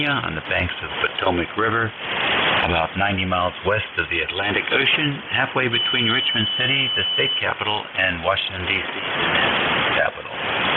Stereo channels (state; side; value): identical; both; correlation 1.00